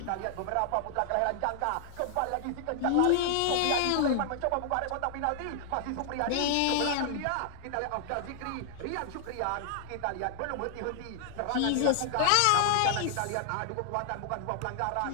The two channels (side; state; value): both; different; correlation -0.01